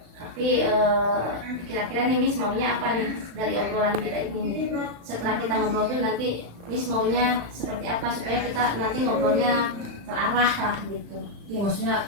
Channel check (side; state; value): left; late; 35 ms